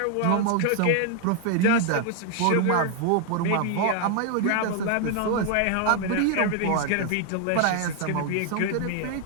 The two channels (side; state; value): both; different; correlation 0.00